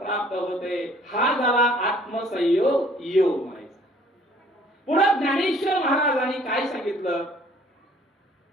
होते. हा झाला आत्मसंयोग योग म्हणायचा. पुढे ज्ञानेश्वर महाराजांनी काय सांगितलं?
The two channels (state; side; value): normal; both; correlation 0.57